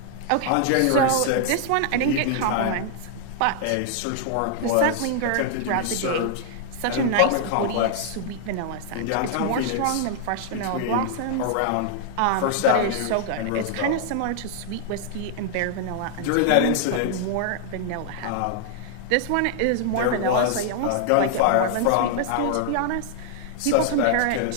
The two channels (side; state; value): both; different; correlation -0.01